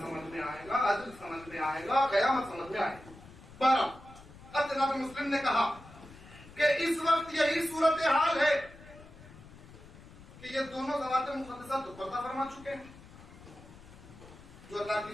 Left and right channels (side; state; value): left; noise; rumble, 19 dB below the sound